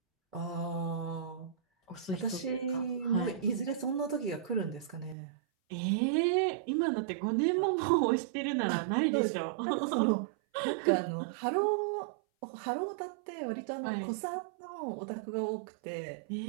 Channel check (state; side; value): drops out; left; at 5.2 s